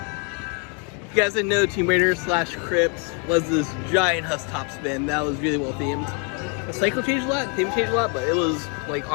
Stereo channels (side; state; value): right; quieter; 33.9 dB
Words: If you guys didn't know, Tomb Raider / Crypt was this giant Huss top spin that was really well themed. The cycle changed a lot, the theme changed a lot, but it was, like,